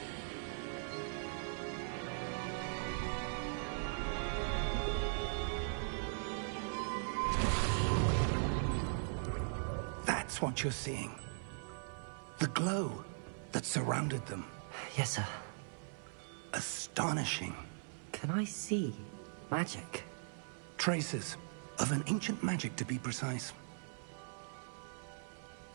That's what you're seeing. The glow that surrounded them. Yes, sir. Astonishing. Can I see magic? Traces of an ancient magic, to be precise.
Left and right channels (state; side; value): silent; left; 51 dB below the other